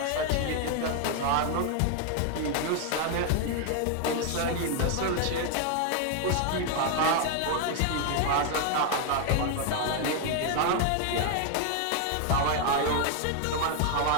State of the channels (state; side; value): different; both; correlation 0.00